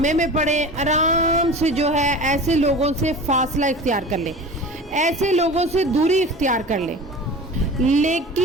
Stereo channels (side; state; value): both; normal; correlation 0.36